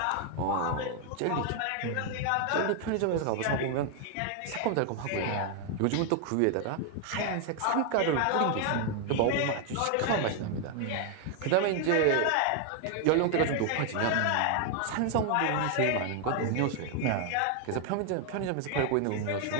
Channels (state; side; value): different; both; correlation 0.00